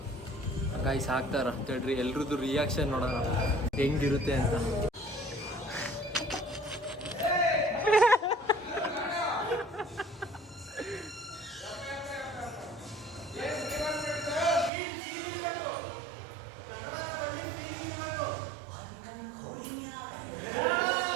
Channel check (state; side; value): drops out; left; at 14.7 s